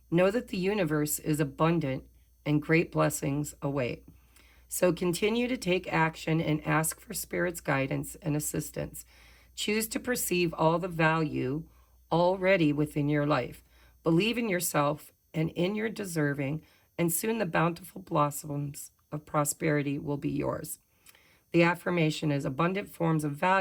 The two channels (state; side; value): identical; both; correlation 1.00